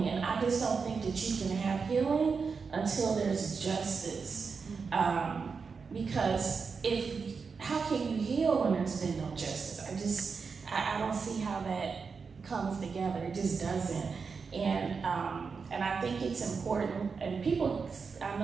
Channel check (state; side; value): quieter; left; 5.3 dB